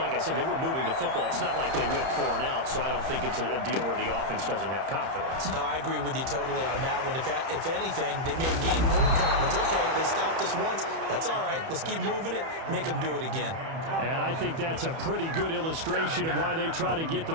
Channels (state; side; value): late; left; 31 ms